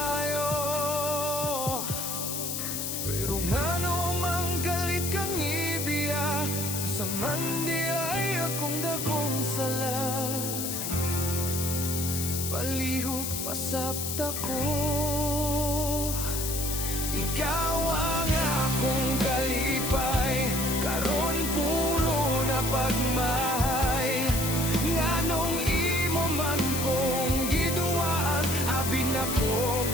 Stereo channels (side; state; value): left; noise; hiss, 3 dB below the sound